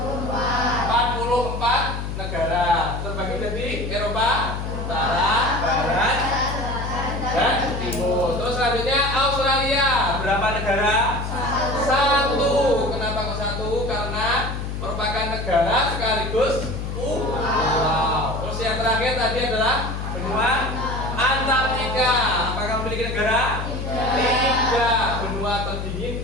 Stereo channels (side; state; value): left; noise; hum, 5 dB below the sound